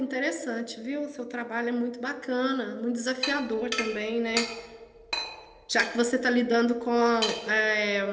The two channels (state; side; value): identical; both; correlation 1.00